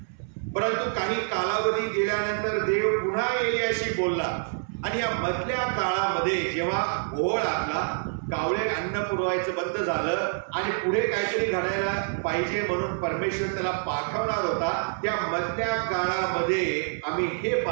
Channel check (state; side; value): silent; left; 60 dB below the other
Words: परंतु काही कालावधी गेल्यानंतर देव पुन्हा एलियाशी बोलला आणि या मधल्या काळामध्ये जेव्हा ओळ आला, कावळे अन्न पुरवायचं बंद झालं आणि पुढे काहीतरी घडायला पाहिजे म्हणून परमेश्वर त्याला पाठवणार होता. त्या मधल्या काळामध्ये आम्ही हे